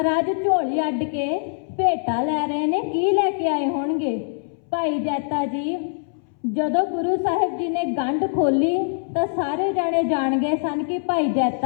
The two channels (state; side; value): silent; right; 62 dB below the other